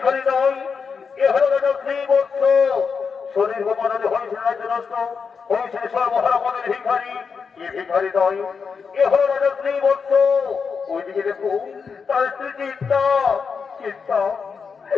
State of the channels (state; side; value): quieter; right; 5.7 dB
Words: নয়, এ হলো রাজশ্রী বলছ। শরীর গোমানলে হয়েছে রাজ্যনষ্ট, হয়েছে সর্বহারামনের ভিখারি। এ ভিখারি নয়, এ হলো রাজশ্রী বলছ। ওইদিকে দেখো তার স্ত্রী চিন্তা। চিন্তা,